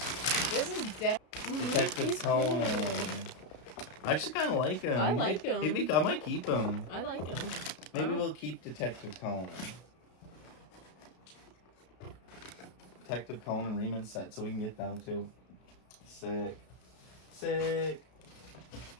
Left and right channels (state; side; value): late; right; 33 ms